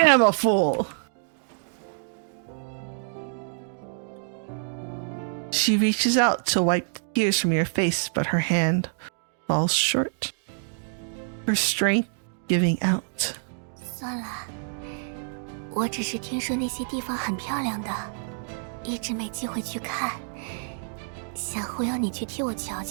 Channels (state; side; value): silent; left; digital silence